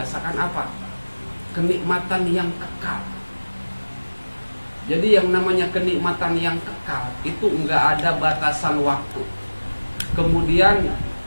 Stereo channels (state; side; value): inverted; both; correlation -1.00